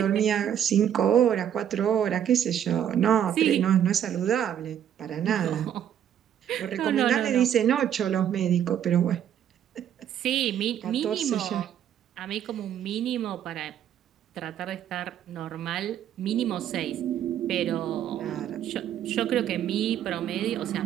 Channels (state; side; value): quieter; left; 9.9 dB